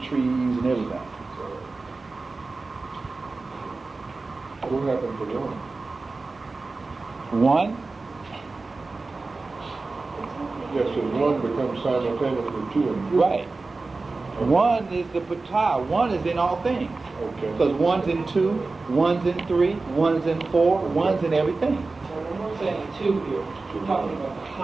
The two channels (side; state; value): left; quieter; 3.7 dB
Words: trees, and everything. What happened to one? One, Yes, so one becomes simultaneously 2 and 3. right. One is the patah. One is in all things. Okay. Because one's in 2, one's in 3, one's in 4, one's in everything. So when we're saying 2 here, we're talking about the